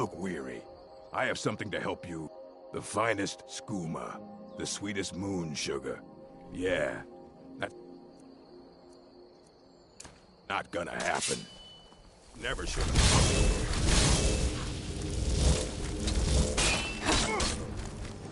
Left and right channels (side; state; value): both; identical; correlation 1.00